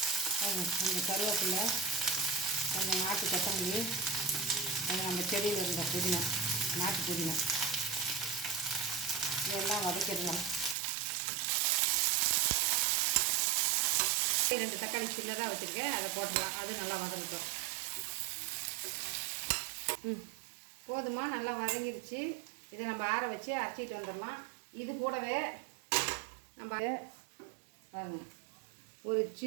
கொஞ்சம் கருவேப்பிலை, கொஞ்சம் நாட்டு கொத்தமல்லி, கொஞ்சம் நம்ம செடியில் இருந்த புதினா, நாட்டு புதினா, இதெல்லாம் வதக்கிடலாம். 2 தக்காளி சின்னதாக வச்சுருக்கேன், அதை போட்டுடலாம். அது நல்லா வதங்கிட்டோம். போதுமா? நல்லா வதங்கிடுச்சு. இதை நம்ம ஆற வச்சு அரைச்சிட்டு வந்துடலாம். இது கூடவே நம்ம பாருங்க, ஒரு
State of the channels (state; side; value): drops out; left; at 10.8 s